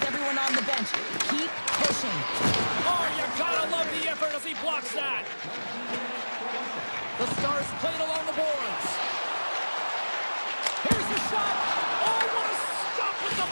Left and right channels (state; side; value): inverted; both; correlation -1.00